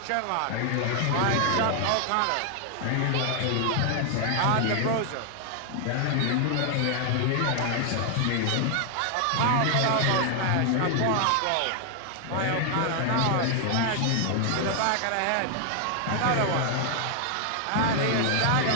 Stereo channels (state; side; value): different; both; correlation 0.00